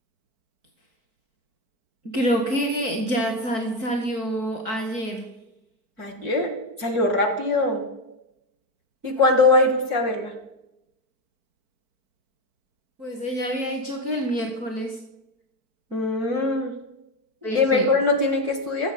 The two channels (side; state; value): left; late; 4.5 ms